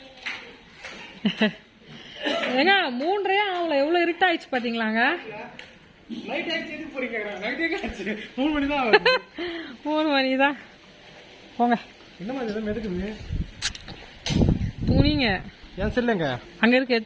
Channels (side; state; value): both; identical; correlation 1.00